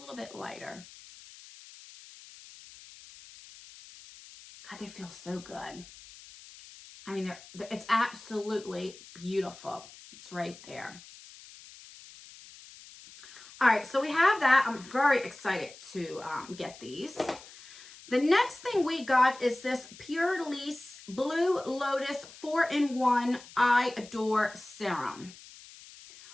bit lighter. God, they feel so good. I mean, it's absolutely beautiful. It's right there. All right, so we have that. I'm very excited to get these. The next thing we got is this Pure Lease Blue Lotus 4-in-1 I Adore Serum,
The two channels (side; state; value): left; noise; hiss, 19 dB below the sound